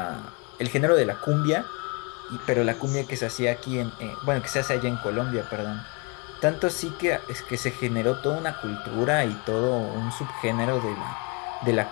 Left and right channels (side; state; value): right; quieter; 31.4 dB